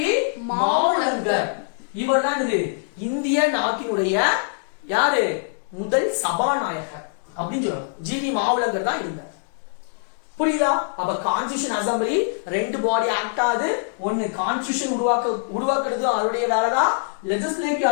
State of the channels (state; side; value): silent; right; digital silence